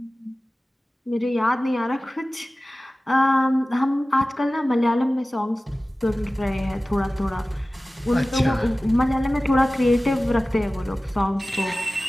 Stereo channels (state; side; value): normal; both; correlation 0.97